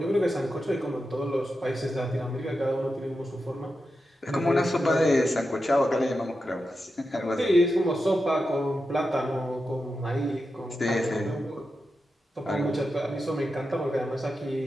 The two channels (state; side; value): normal; both; correlation 0.89